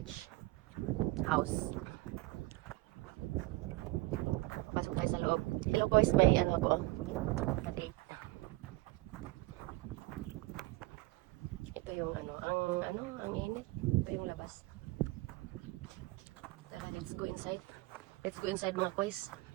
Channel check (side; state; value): left; quieter; 20.2 dB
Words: House. Pasok tayo sa loob. Hello guys, may ano ako. Na-date. Ito yung ang init. Ito yung labas. Tara, let's go inside. Let's go inside mga boys.